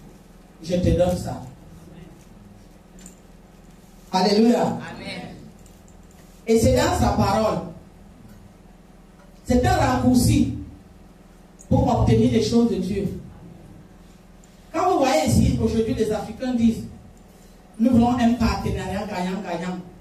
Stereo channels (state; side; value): identical; both; correlation 1.00